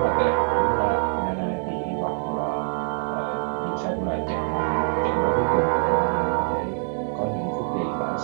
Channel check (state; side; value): silent; left; 62 dB below the other